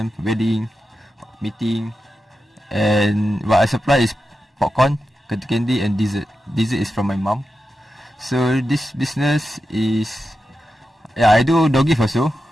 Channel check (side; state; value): both; normal; correlation 0.90